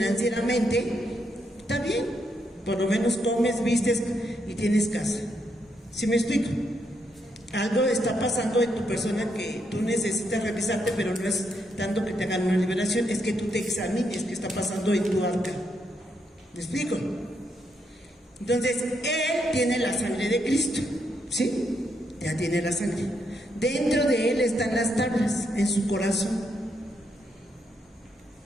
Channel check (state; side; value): normal; both; correlation 0.78